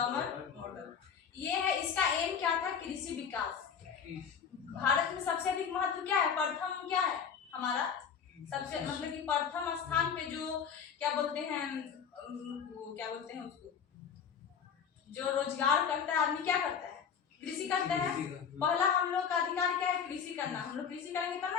मॉडल। ये है, इसका एम क्या था, कृषि विकास। भारत में सबसे अधिक महत्व क्या है, प्रथम क्या है हमारा, सबसे मतलब कि प्रथम स्थान पे जो क्या बोलते हैं, वो क्या बोलते हैं उसको, जो रोजगार करता है आदमी, क्या करता है, कृषि करता है। पहला हम लोग का अधिकार क्या है, कृषि करना। हम लोग कृषि करेंगे तब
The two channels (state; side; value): quieter; right; 7.1 dB